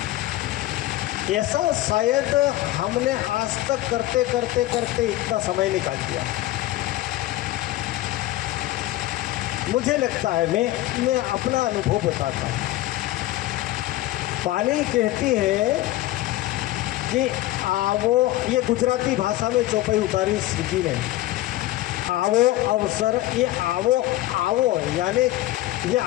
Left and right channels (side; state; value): right; quieter; 16.2 dB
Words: ऐसा शायद हमने आज तक करते करते करते इतना समय निकाल दिया। मुझे लगता है, मैं अपना अनुभव बताता हूँ। वाणी कहती है कि आवो, ये गुजराती भाषा में चौपाई उतारी श्री जी ने। आवो अवसर, ये आवो आवो यानी ये